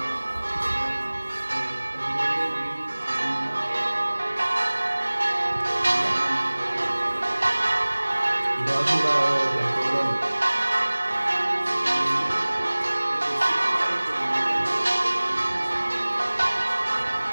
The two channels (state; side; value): inverted; both; correlation -1.00